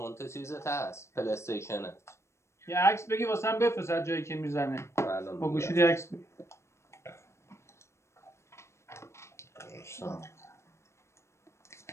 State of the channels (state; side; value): late; right; 0.13 ms